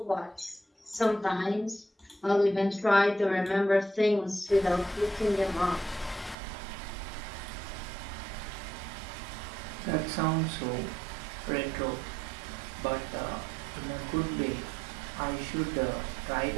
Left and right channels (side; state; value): left; drops out; at 6.4 s